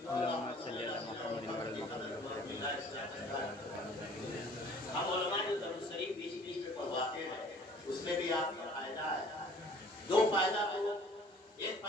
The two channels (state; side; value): normal; both; correlation 0.52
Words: हम उलमा जो दुरूद शरीफ बीच बीच में पढ़वाते हैं, उसमें भी आपका फायदा है। दो फायदा, तो एक